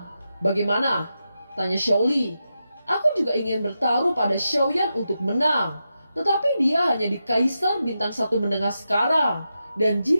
Bagaimana?" tanya Xiaoli. "Aku juga ingin bertaruh pada Xiaoyan untuk menang. Tetapi dia hanya di Kaisar Bintang 1 menengah sekarang. Dan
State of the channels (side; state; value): both; inverted; correlation -0.88